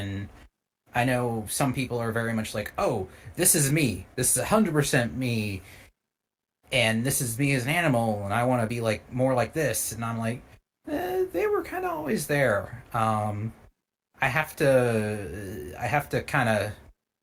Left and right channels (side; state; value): both; identical; correlation 1.00